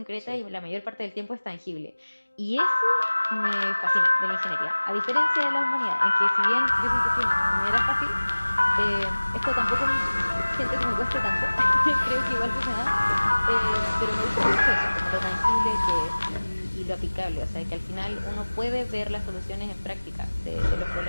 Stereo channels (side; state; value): both; inverted; correlation -1.00